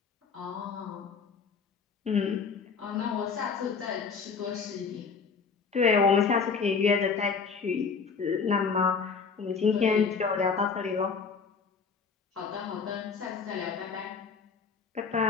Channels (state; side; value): quieter; right; 5.4 dB